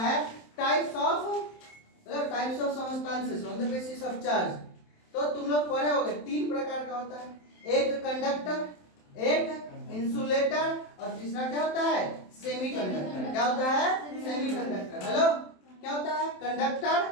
types of substances on the basis of charge. तो तुम लोग पढ़े होगे, तीन प्रकार का होता है, एक कंडक्टर, एक इंसुलेटर, और तीसरा क्या होता है, सेमीकंडक्टर। क्या होता है, सेमीकंडक्टर। हेलो क्या होता है,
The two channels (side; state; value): right; late; 27 ms